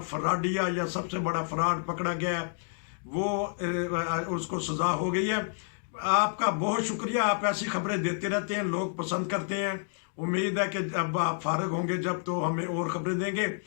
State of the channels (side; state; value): right; silent; digital silence